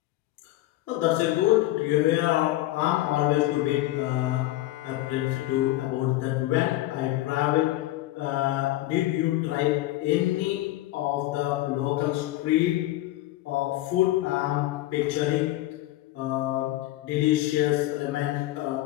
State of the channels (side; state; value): right; quieter; 16.4 dB